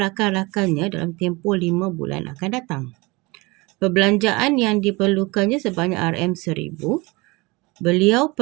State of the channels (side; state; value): left; quieter; 24.6 dB